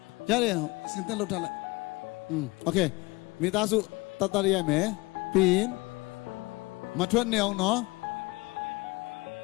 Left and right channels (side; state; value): right; quieter; 23.5 dB